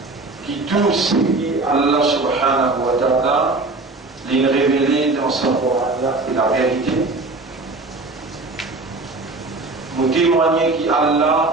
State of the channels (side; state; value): left; quieter; 3.3 dB